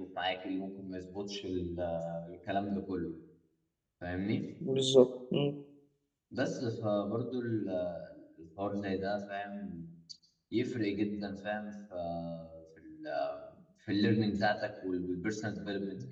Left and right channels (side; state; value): both; identical; correlation 1.00